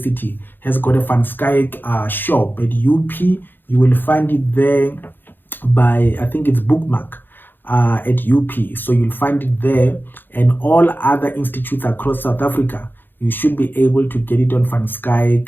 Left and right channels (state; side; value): late; right; 0.095 ms